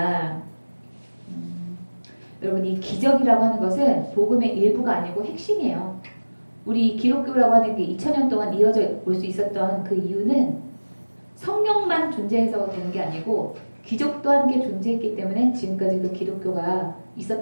여러분 이 기적이라고 하는 것은 복음의 일부가 아니고 핵심이에요. 우리 기독교라고 하는 게 2000년 동안 이어져 올 수 있었던 그 이유는 성령만 존재해서 되는 게 아니고 기적도 함께 존재했기 때문에 지금까지 그 기독교가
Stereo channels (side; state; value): both; inverted; correlation -1.00